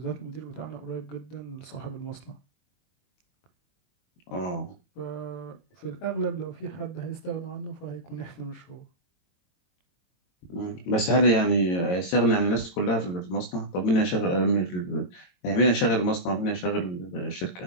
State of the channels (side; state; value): right; late; 22 ms